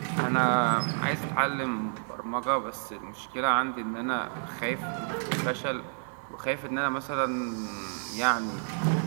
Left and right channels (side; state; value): left; silent; digital silence